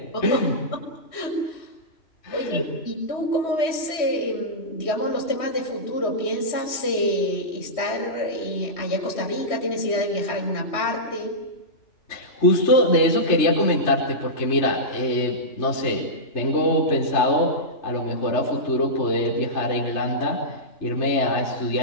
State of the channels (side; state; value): right; late; 3.1 ms